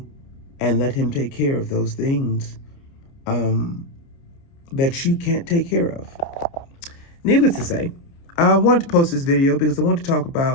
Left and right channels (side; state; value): right; late; 29 ms